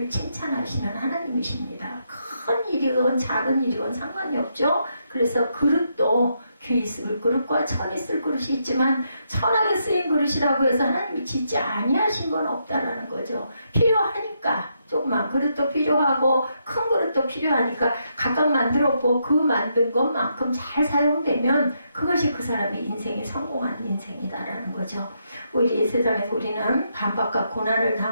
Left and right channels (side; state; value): both; inverted; correlation -0.79